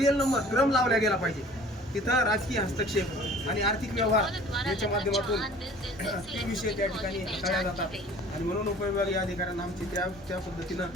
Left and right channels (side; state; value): both; normal; correlation 0.48